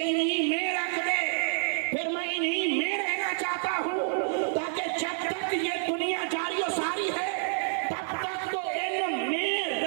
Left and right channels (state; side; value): silent; left; 58 dB below the other